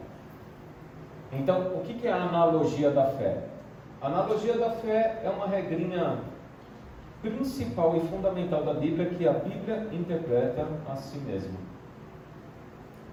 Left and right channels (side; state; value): both; identical; correlation 1.00